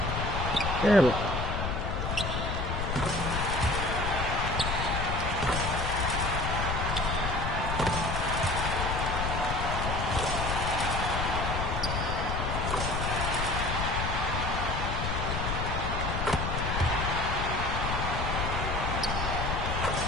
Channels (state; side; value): noise; left; rumble, 2 dB below the sound